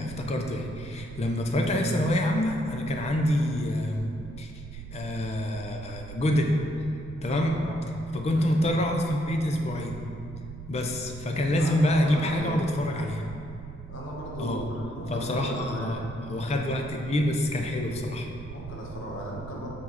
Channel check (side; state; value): right; noise; rumble, 13 dB below the sound